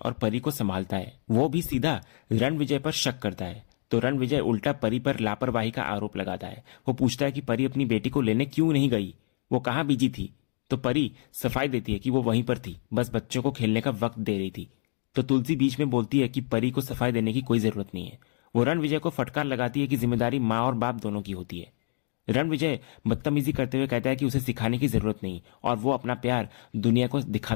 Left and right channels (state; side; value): silent; right; digital silence